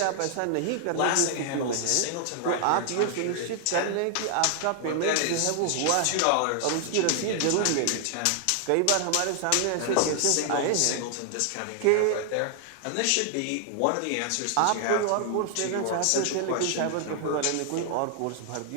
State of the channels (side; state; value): both; different; correlation 0.00